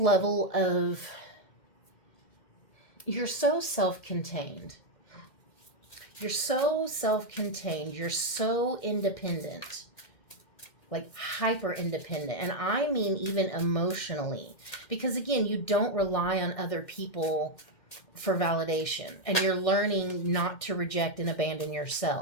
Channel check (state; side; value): late; right; 2.1 ms